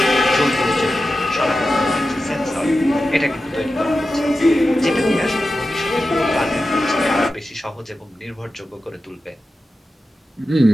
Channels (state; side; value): normal; both; correlation 0.92